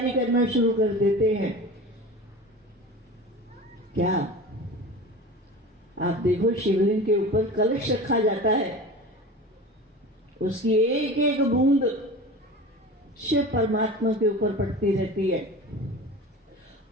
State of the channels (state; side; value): normal; both; correlation 0.34